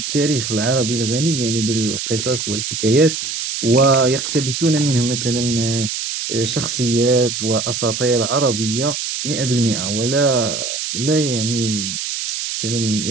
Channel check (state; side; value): noise; right; hiss, 4 dB below the sound